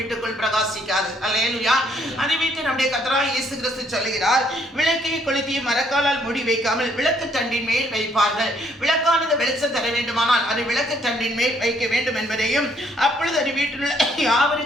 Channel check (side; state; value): both; normal; correlation 0.68